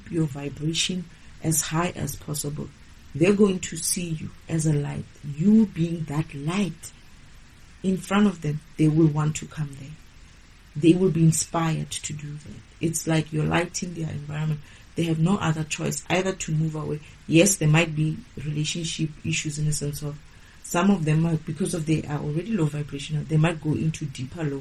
your vibration as high as possible. they're going to see you as a light. You being that light in front of them, they will want to come there. They will be inspired to do that. It's like you're lighting their environment. They have no other choice either to move away. Yes, there might be relationship issues in the sense of some of them might, because of they are already low vibrational, they might go into deeper low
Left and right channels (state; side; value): identical; both; correlation 1.00